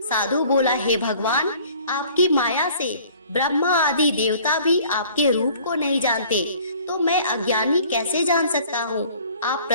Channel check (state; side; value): inverted; both; correlation -0.52